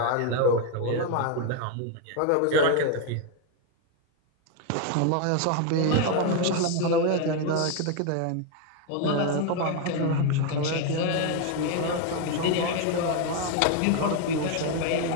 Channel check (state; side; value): different; both; correlation 0.01